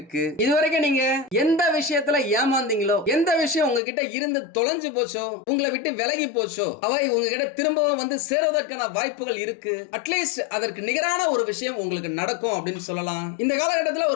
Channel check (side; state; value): right; drops out; at 3.8 s